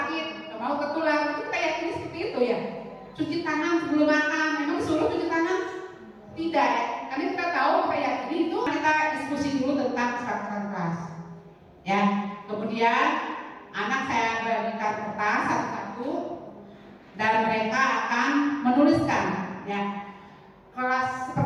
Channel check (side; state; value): both; identical; correlation 1.00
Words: nggak mau tertular. Itu kita yakini seperti itu ya. Cuci tangan sebelum makan, memang disuruh cuci tangan? Tidak ya, karena kita tahu kita yakini itu. Kita diskusi dulu tentang kesepakatan kelas. Ya, kemudian anak saya bagikan kertas satu-satu dan mereka akan menuliskan ya kelas